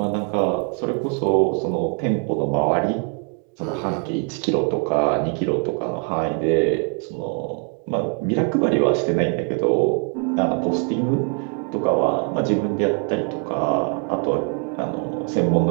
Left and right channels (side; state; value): left; quieter; 38.7 dB